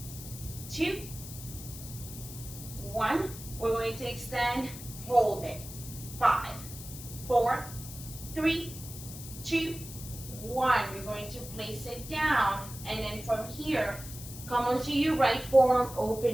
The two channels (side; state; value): left; noise; hiss, 12 dB below the sound